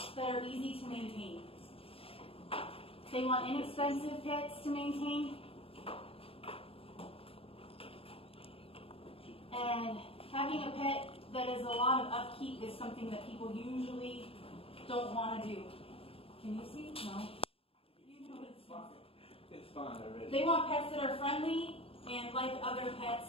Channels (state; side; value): late; right; 0.27 ms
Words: that are easy to maintain. They want inexpensive pets to maintain. And having a pet that is a lot of upkeep is something that people usually don't want to do. Can you see? No. You know It's fine already. They want pets that are friendly and like other